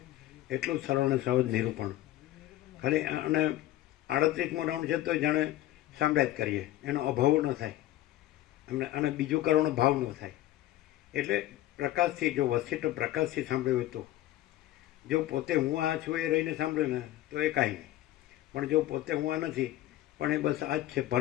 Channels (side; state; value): right; quieter; 14.7 dB